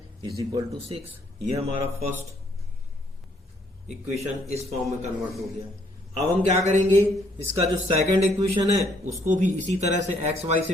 इज इक्वल टू 6। ये हमारा फर्स्ट इक्वेशन इस फॉर्म में कन्वर्ट हो गया। अब हम क्या करेंगे, इसका जो सेकंड इक्वेशन है उसको भी इसी तरह से एक्स वाई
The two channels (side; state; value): both; normal; correlation 0.67